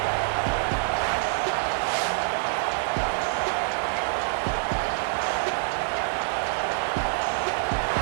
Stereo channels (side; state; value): left; silent; 58 dB below the other